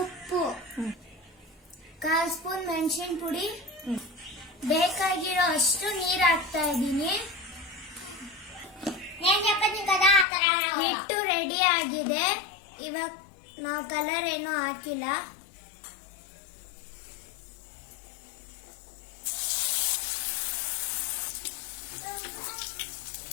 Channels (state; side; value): drops out; right; at 10.2 s